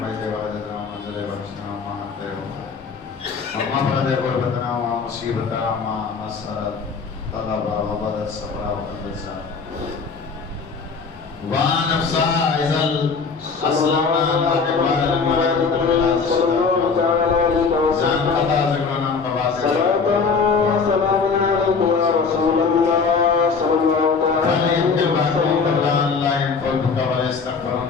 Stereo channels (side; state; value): right; quieter; 5.1 dB